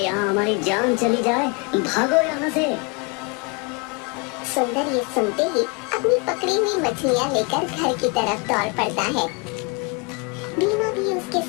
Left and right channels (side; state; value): right; quieter; 30.8 dB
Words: हमारी जान चली जाए, भागो यहाँ से। सुंदर ये सुनते ही अपनी पकड़ी हुई मछलियाँ लेकर घर की तरफ दौड़ पड़ता है। भीमा भी उसके